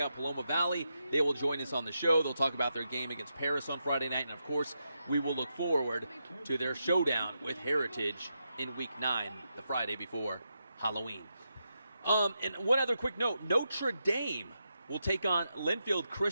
out Paloma Valley. They will join us on the show. They'll talk about their game against Paris on Friday night. And, of course, we will look forward to their showdown with Heritage in Week 9, the Friday before Halloween. And one other quick note, Notre Dame will take on Linfield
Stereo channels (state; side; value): inverted; both; correlation -0.85